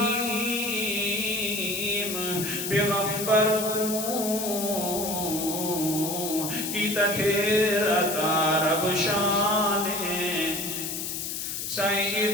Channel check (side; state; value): left; noise; hiss, 4 dB below the sound